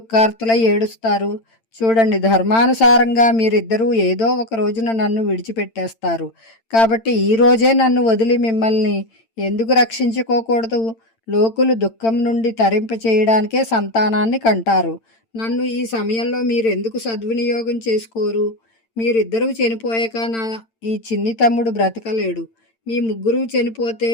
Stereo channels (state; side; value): late; right; 8.9 ms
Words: ఏడుస్తారు? చూడండి, ధర్మానుసారంగా మీరిద్దరూ ఏదో ఒక రోజున నన్ను విడిచిపెట్టేస్తారు. కాబట్టి ఈ రోజే నన్ను వదిలి మిమ్మల్ని ఎందుకు రక్షించుకోకూడదు? లోకులు దుఃఖం నుండి తరింప చేయడానికే సంతానాన్ని కంటారు. నన్ను ఈ సమయంలో మీరెందుకు సద్వినియోగం చేసుకోరు? మీరిద్దరూ చనిపోయాక నా ఈ చిన్ని తమ్ముడు బ్రతకలేడు. మీ ముగ్గురు చనిపోతే